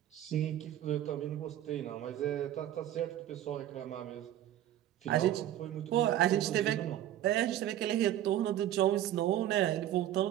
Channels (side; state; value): left; quieter; 12.3 dB